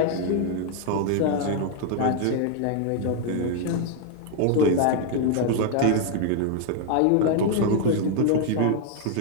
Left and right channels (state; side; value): different; both; correlation 0.00